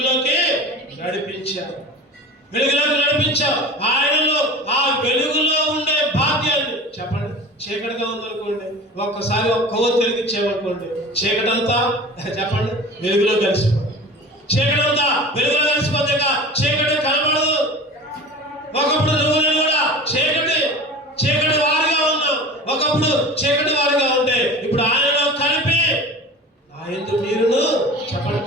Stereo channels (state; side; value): normal; both; correlation 0.37